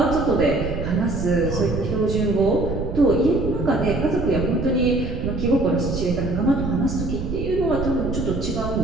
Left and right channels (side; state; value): right; noise; rumble, 5 dB below the sound